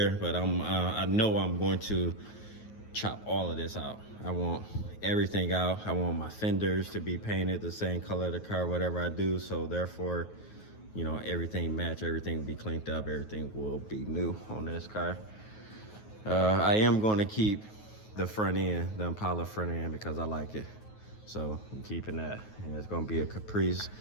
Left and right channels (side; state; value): right; late; 9.3 ms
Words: but I know I'm going to chop all of this out. I want everything out. I want my fenders to be painted the same color of the car, whatever I do. So therefore, you know, everything match, everything will be cleaned up, everything will be new on this car. I am gonna keep the front end, the Impala front end, because I like it. So I'm keeping that. And it's gonna be a Caprice